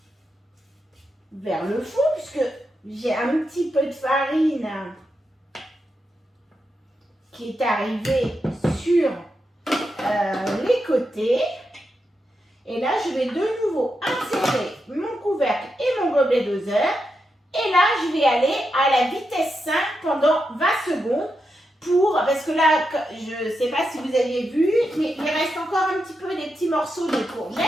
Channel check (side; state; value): both; normal; correlation 0.86